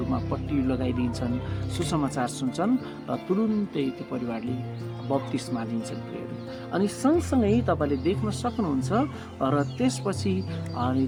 पट्टी लगाइदिन्छन्, सुसमाचार सुन्छन् र तुरुन्तै त्यो परिवारले बप्तिस्मा लिन्छन् प्रियहरू। अनि सँगसँगै तपाईँले देख्न सक्नुहुन्छ र त्यसपछि अनि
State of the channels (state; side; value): identical; both; correlation 1.00